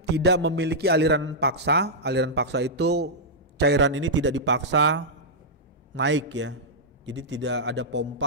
tidak memiliki aliran paksa. Aliran paksa itu cairan ini tidak dipaksa naik ya. Jadi tidak ada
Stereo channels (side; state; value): both; normal; correlation -0.10